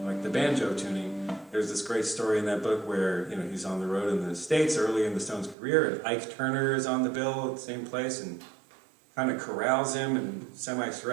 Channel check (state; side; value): drops out; left; at 5.6 s